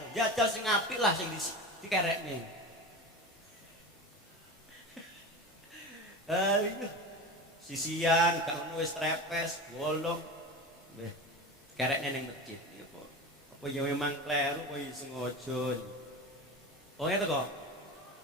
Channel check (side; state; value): both; normal; correlation 0.28